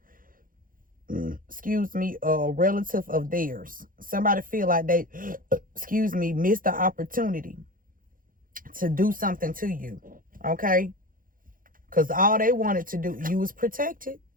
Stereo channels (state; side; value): late; left; 0.40 ms